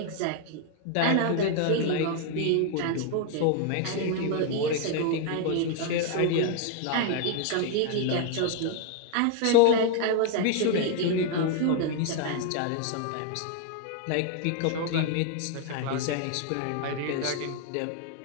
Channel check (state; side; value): different; both; correlation 0.01